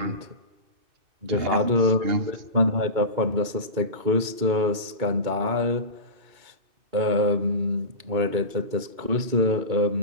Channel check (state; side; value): late; left; 2.3 ms